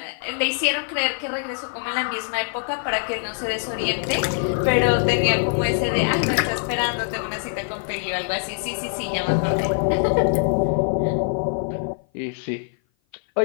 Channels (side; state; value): right; silent; 56 dB below the other